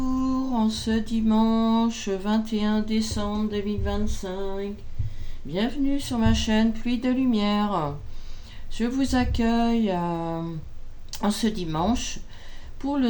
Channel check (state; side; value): identical; both; correlation 1.00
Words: en ce dimanche 21 décembre 2025. Bienvenue sur ma chaîne Pluie de Lumière. Je vous accueille en ce dimanche pour